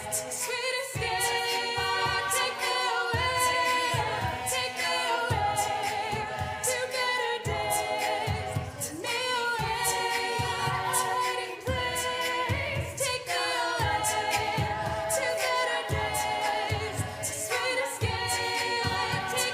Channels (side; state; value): both; identical; correlation 1.00